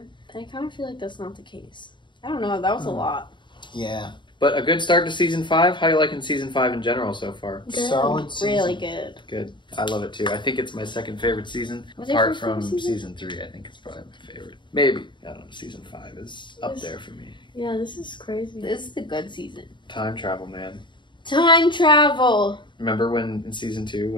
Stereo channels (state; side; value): late; right; 0.23 ms